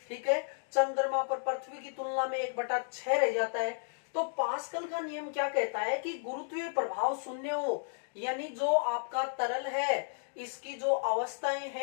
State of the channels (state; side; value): silent; right; digital silence